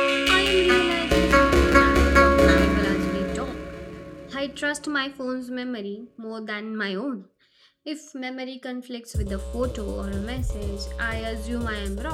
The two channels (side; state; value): both; identical; correlation 1.00